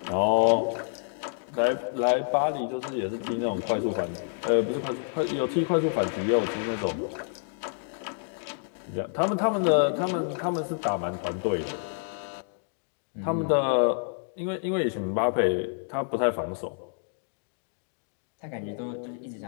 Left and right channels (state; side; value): silent; right; digital silence